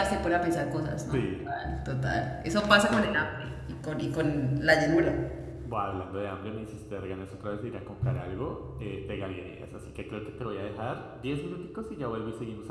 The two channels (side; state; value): both; identical; correlation 1.00